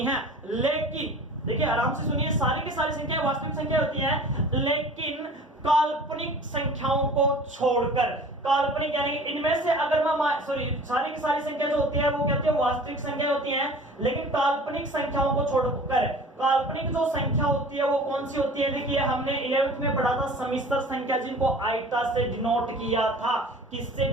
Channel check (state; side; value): normal; both; correlation 0.43